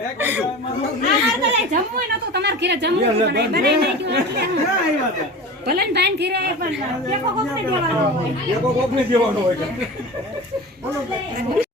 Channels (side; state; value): both; normal; correlation 0.33